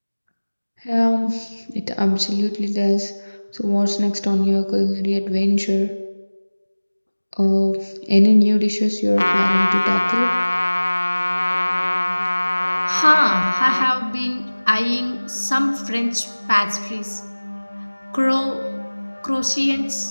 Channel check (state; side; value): inverted; both; correlation -1.00